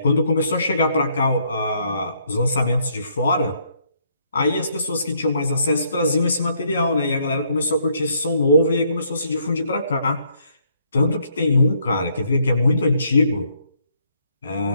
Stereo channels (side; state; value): both; inverted; correlation -0.70